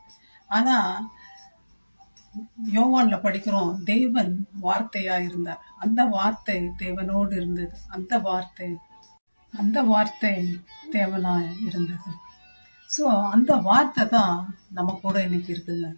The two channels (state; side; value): inverted; both; correlation -1.00